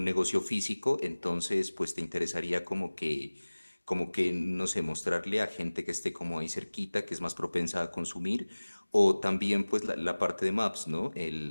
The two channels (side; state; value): both; inverted; correlation -1.00